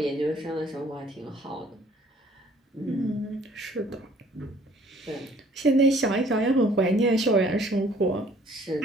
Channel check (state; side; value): normal; both; correlation 0.57